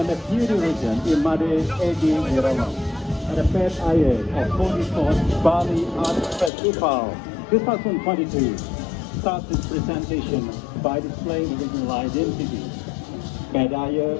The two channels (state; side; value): drops out; right; at 6.5 s